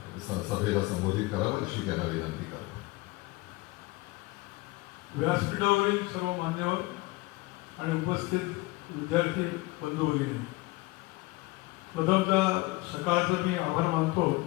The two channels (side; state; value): right; quieter; 22.0 dB